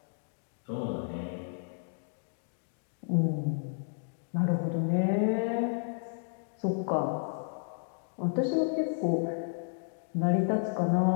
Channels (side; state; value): right; silent; digital silence